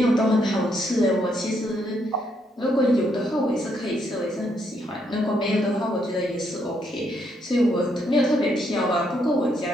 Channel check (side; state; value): both; normal; correlation 0.75